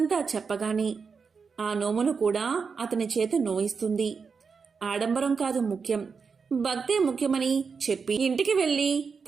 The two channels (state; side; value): quieter; left; 5.4 dB